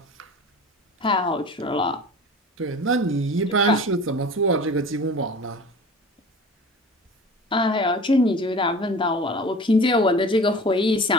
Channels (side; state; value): both; normal; correlation 0.39